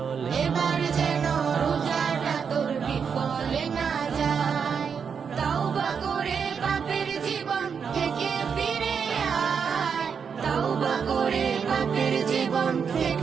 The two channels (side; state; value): left; quieter; 6.5 dB